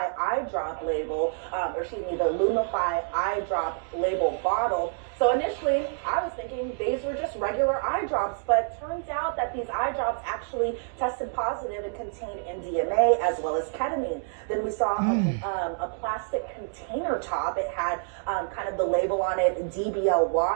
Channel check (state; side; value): silent; left; 60 dB below the other